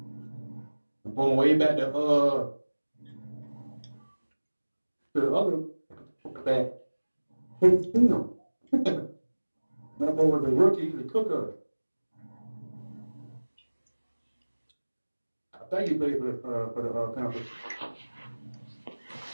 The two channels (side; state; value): both; inverted; correlation -1.00